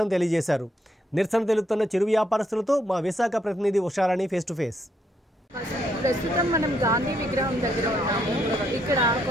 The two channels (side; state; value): both; normal; correlation 0.74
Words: తెలియజేశారు. నిరసన తెలుపుతున్న చిరు వ్యాపారస్తులతో మా విశాఖ ప్రతినిధి ఉషారాణి ఫేస్ టు ఫేస్. ప్రస్తుతం మనం గాంధీ విగ్రహం దగ్గర ఉన్నాము. ఇక్కడ